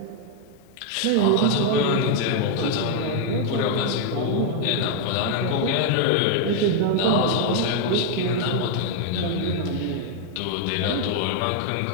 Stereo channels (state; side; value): different; both; correlation 0.00